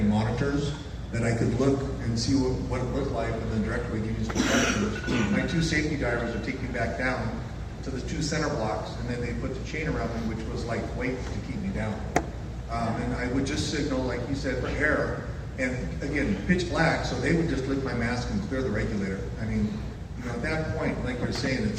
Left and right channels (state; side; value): identical; both; correlation 1.00